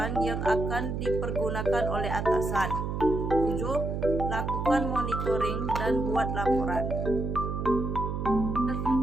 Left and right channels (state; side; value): noise; right; hum, 3 dB below the sound